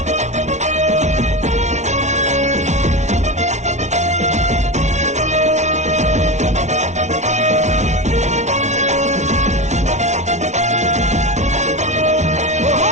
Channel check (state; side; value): late; left; 0.33 ms